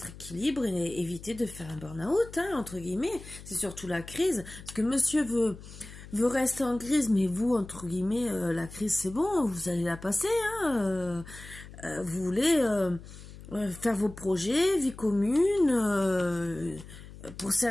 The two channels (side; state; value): left; noise; hum, 16 dB below the sound